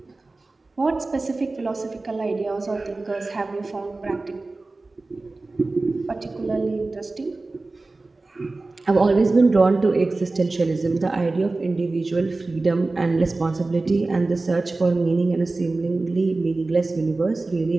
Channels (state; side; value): quieter; left; 3.3 dB